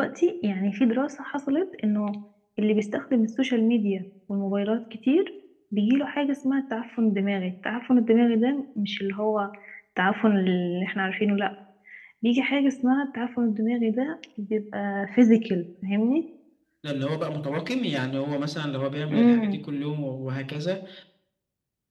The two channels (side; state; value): both; identical; correlation 1.00